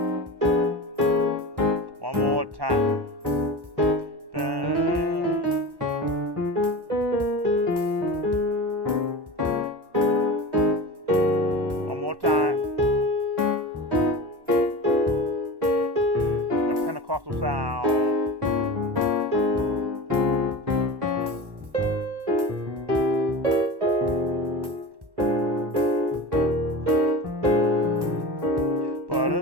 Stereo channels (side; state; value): left; late; 1.1 ms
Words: one more time. One more time. The Pentecostal sound.